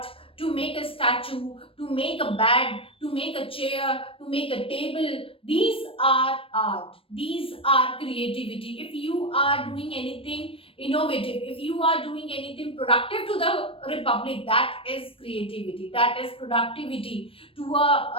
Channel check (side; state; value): right; late; 0.26 ms